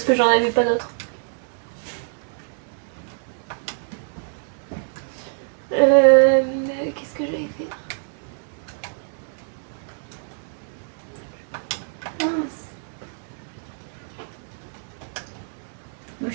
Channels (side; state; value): left; silent; digital silence